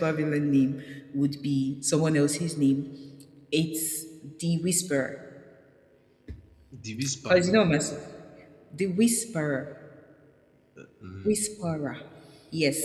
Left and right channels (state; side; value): identical; both; correlation 1.00